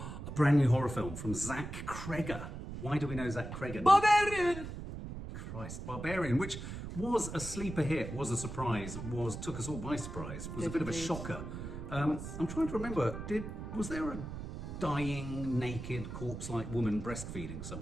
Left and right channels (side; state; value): right; noise; rumble, 8 dB below the sound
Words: brand new horror film from Zach Cregger. Why do we know Zach Cregger? Barbarian! Christ, Barbarian, which was a sleeper hit, was a surprise, took us all by surprise, was a bit of a shocker. I'm trying to remember, was there a dying, naked, corpse-like woman breastfeeding